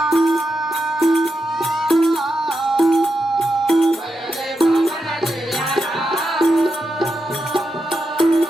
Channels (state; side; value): normal; both; correlation 0.87